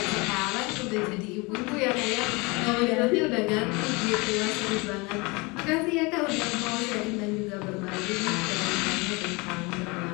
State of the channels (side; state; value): right; quieter; 26.6 dB